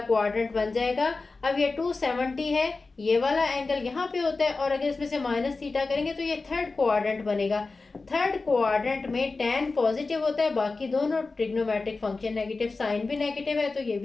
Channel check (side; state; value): right; quieter; 3.8 dB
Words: बन जाएगा। अब ये 270 है, ये वाला एंगल यहाँ पे होता है और अगर इसमें से माइनस थीटा करेंगे तो ये थर्ड क्वाड्रेंट बनेगा। थर्ड क्वाड्रेंट में टेन पॉजिटिव होता है, बाकी दोनों ट्रिग्नोमेट्रिक फंक्शन नेगेटिव, साइन भी नेगेटिव है तो ये